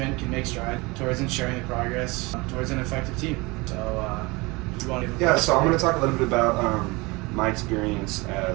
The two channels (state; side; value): quieter; left; 24.6 dB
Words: can make strides towards ensuring the progress towards an effective team. So, you want to Yeah, so I'm going to talk a little bit about my experience